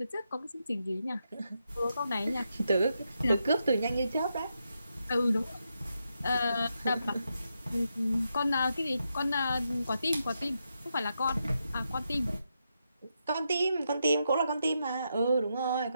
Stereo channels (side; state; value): both; inverted; correlation -0.84